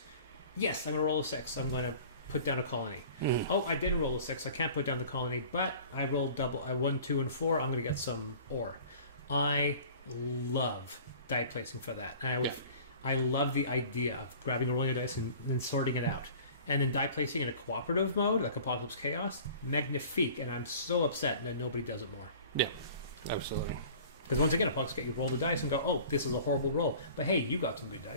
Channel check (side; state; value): both; inverted; correlation -0.45